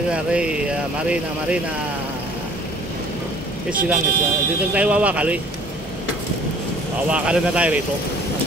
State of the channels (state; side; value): normal; both; correlation 0.54